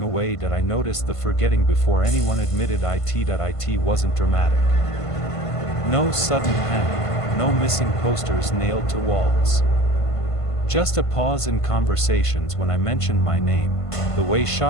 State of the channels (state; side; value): late; right; 1.5 ms